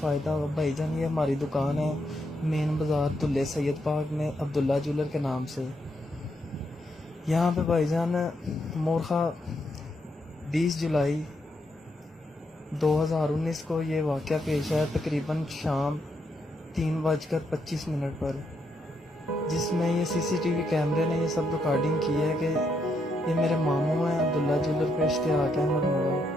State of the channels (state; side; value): normal; both; correlation 0.79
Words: होगा। भाईजान ये हमारी दुकान है मेन बाज़ार दुल्ले सैयद पार्क में, अब्दुल्ला ज्वेलर के नाम से। यहाँ पे भाईजान मोरखा 20 जुलाई 2019 को ये वाक़या पेश आया, तकरीबन शाम 3:25 पर, जिसमें ये सीसीटीवी कैमरे ने ये सब रिकॉर्डिंग की है कि ये मेरे मामू हैं अब्दुल्ला ज्वेलर पे इश्तियाक अहमद मुगल,